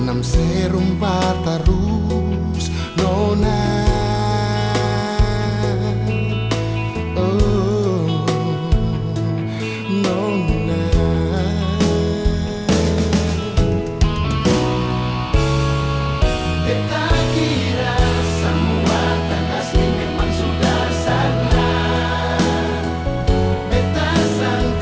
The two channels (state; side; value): identical; both; correlation 1.00